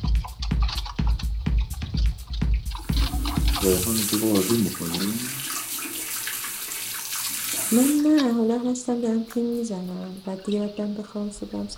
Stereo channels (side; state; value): both; identical; correlation 1.00